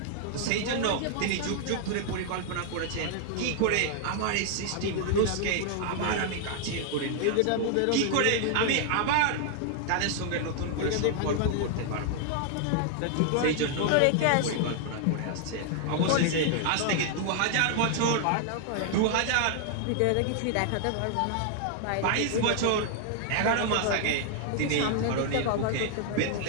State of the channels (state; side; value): different; both; correlation 0.00